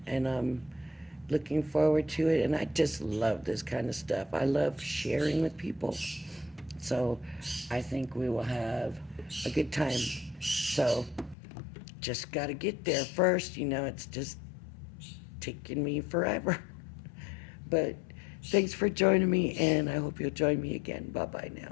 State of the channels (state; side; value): drops out; right; at 11.4 s